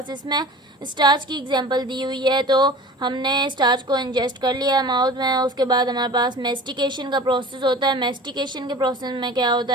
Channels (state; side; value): normal; both; correlation 0.40